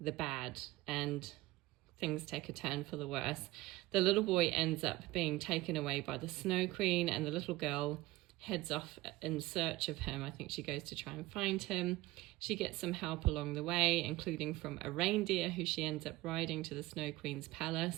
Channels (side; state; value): left; quieter; 18.7 dB